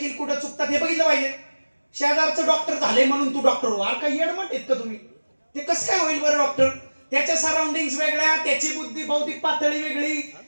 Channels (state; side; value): inverted; both; correlation -1.00